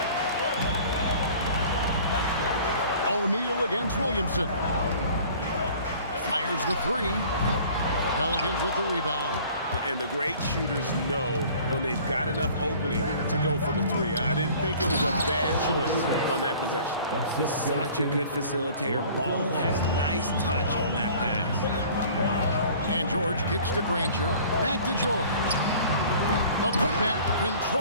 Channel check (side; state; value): both; inverted; correlation -0.48